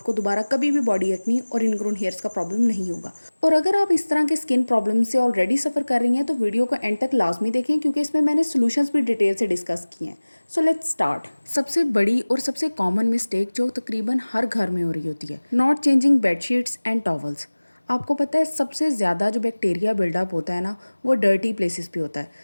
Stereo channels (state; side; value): inverted; both; correlation -1.00